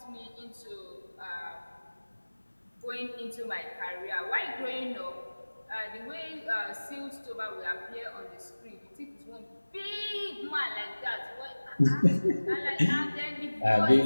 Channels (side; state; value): both; inverted; correlation -1.00